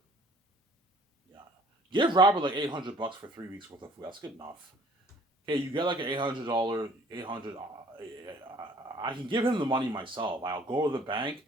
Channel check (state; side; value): normal; both; correlation 0.55